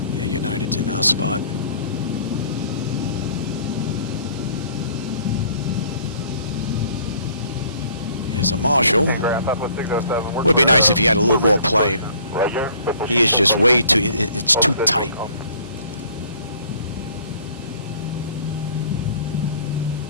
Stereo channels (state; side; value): inverted; both; correlation -0.56